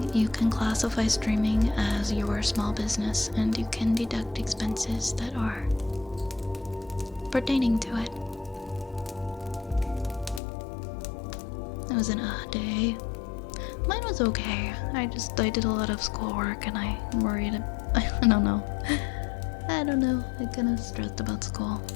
you can classify streaming as your small business and you can deduct expenses that are pertaining to it. It was an odd day. Mine was okay. I did a lot of schoolwork and I worried. I don't know. I don't know. I kind of stressed about school.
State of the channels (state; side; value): drops out; right; at 10.4 s